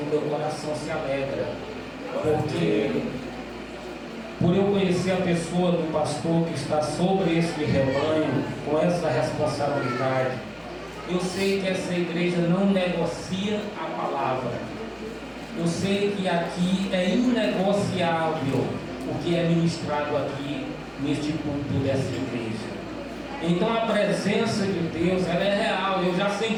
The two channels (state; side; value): identical; both; correlation 1.00